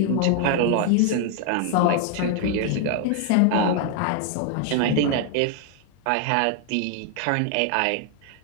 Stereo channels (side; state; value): both; different; correlation 0.00